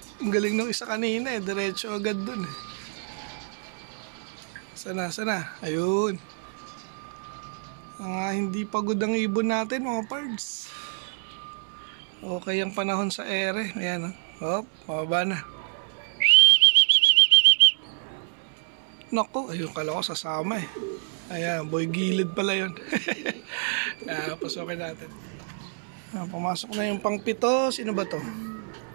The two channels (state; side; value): silent; left; 60 dB below the other